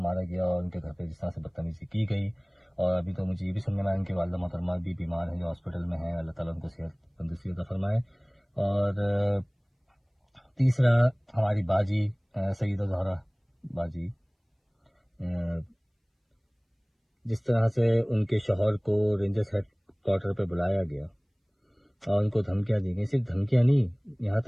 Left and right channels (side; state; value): both; identical; correlation 1.00